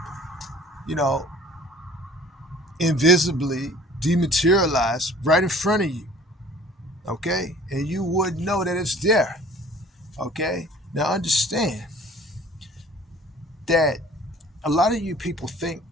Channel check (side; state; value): both; normal; correlation 0.49